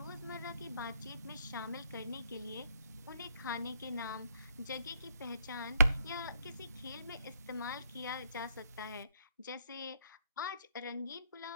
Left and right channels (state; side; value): inverted; both; correlation -0.69